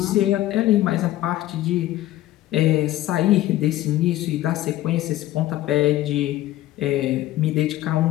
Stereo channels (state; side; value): quieter; right; 14.9 dB